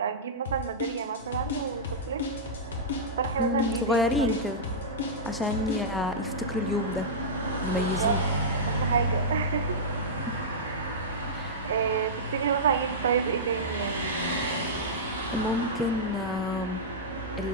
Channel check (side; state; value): both; normal; correlation -0.13